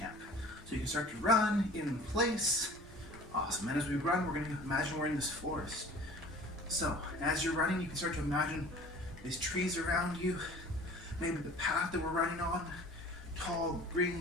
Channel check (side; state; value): both; normal; correlation 0.45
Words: So you can start to run in place. Awesome. And as we run, we're going to imagine we're in this forest. So as you're running, you can start to imagine these trees around you. Maybe the path that we're running on. Tall